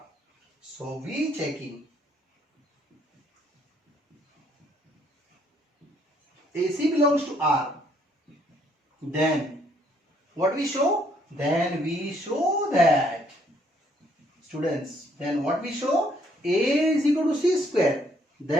So we checking AC belongs to R. Then what we show? Then we show that, students, then what we show? A is equal to C square.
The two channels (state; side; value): normal; both; correlation 0.67